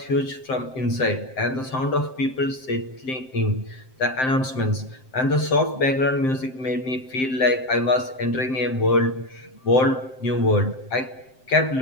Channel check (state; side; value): late; right; 7.7 ms